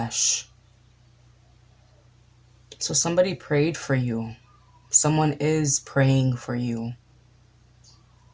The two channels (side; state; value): both; identical; correlation 1.00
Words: So somebody prayed for you. Someone is praying for you.